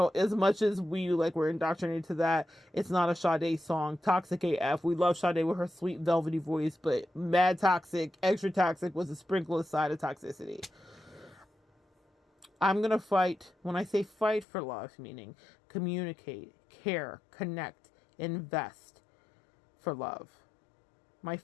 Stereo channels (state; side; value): drops out; right; at 14.5 s